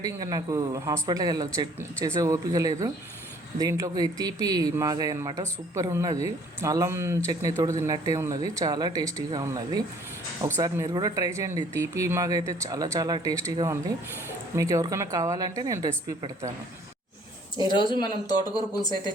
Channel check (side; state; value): both; normal; correlation 0.57